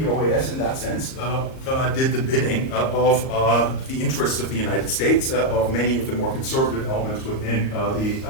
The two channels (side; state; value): right; late; 38 ms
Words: OAS, in that sense, did the bidding of the interests of the United States, of many of the more conservative elements within